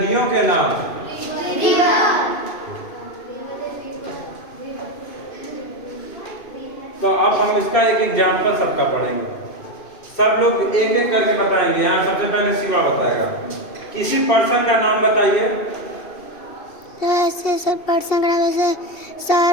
के नाम, तो अब हम इसका एक एग्जाम्पल सबका पढ़ेंगे। सब लोग एक एक करके बताएंगे। यहाँ सबसे पहले शिवा बताएगा। किसी पर्सन का नाम बताइए। ऐसे सब पर्सन का नाम जैसे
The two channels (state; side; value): late; right; 2.5 ms